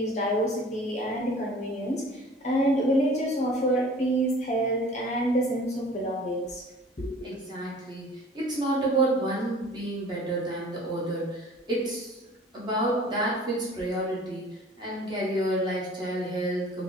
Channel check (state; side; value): normal; both; correlation 0.47